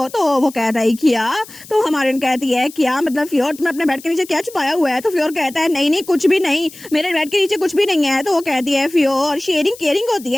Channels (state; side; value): noise; left; hiss, 19 dB below the sound